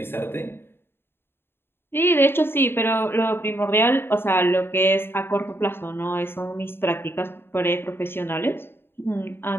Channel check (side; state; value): right; late; 0.11 ms